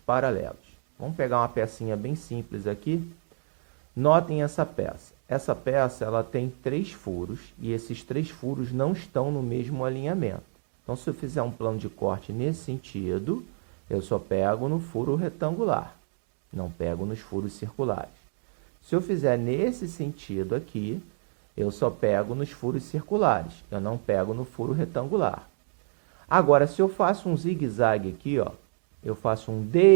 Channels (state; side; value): silent; left; digital silence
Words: Vamos pegar uma pecinha bem simples aqui. Notem essa peça. Essa peça ela tem 3 furos e esses 3 furos não estão no mesmo alinhamento. Então, se eu fizer um plano de corte nesse sentido, eu só pego no furo retangular, não pego nos furos circulares. Se eu fizer nesse sentido aqui, eu só pego nos furos circulares, eu não pego no furo retangular. Agora, se eu faço um zigue-zague aqui, ó, eu faço um